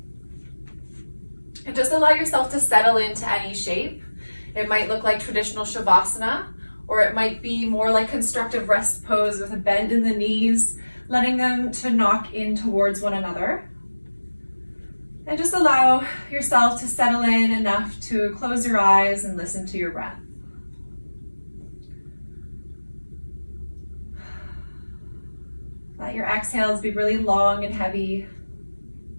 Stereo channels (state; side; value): inverted; both; correlation -1.00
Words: And just allow yourself to settle into any shape. It might look like traditional Shavasana, or it might be more like constructive rest pose with a bend in the knees, letting them to knock in towards one another. And just allow yourself to settle in enough to close your eyes and listen to your breath. Let your exhales be really long and heavy.